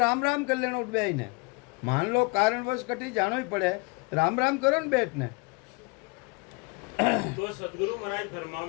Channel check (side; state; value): right; quieter; 29.5 dB